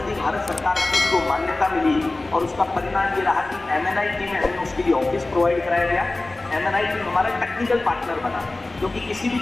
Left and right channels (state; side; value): quieter; right; 3.0 dB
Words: भारत सरकार को उसको मान्यता मिली, और उसका परिणाम ये रहा कि MNIT में हमें उसके लिए ऑफिस प्रोवाइड कराया गया। MNI टीम हमारा टेक्निकल पार्टनर बना, क्योंकि किसी भी